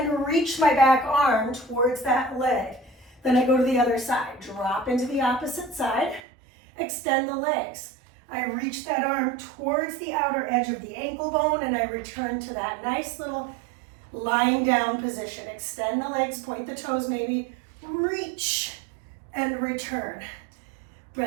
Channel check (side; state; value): left; drops out; at 6.2 s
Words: reach my back arm towards that leg. Then I go to the other side. Drop into the opposite side. Extend the legs. I reach that arm towards the outer edge of the ankle bone and I return to that nice little lying down position. Extend the legs, point the toes maybe, reach and return.